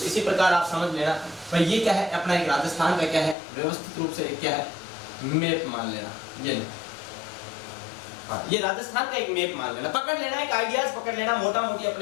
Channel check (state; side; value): drops out; right; at 3.4 s